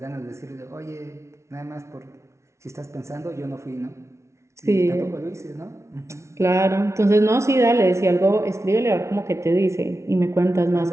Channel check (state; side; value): late; left; 0.13 ms